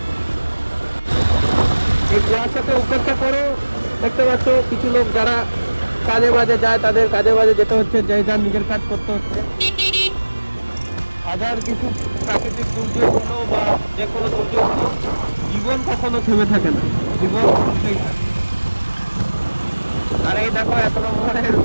এই কুয়াশাকে উপেক্ষা করো, দেখতে পাচ্ছ কিছু লোক যারা কাজে বাজে যায়, তাদের কাজে বাজে যেতে হচ্ছে, যে যার নিজের কাজ করতে হচ্ছে। হাজার কিছু প্রাকৃতিক দুর্যোগ হলো বা যে কোনো দুর্যোগ হলো, জীবন কখনো থেমে থাকে না, জীবন চলতেই থাকে। আর এই দেখো 1 নম্বরের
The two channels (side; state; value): both; inverted; correlation -1.00